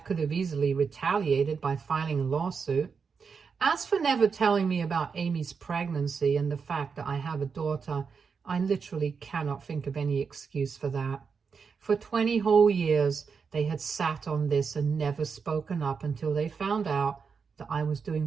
could have easily retaliated by filing a lawsuit. As for never telling me about Amy's pregnancy and the fact that I have a daughter, I literally cannot think of any excuse for that. For 20 whole years, they had sat on this and never spoken up until they found out that I was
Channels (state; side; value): quieter; left; 5.7 dB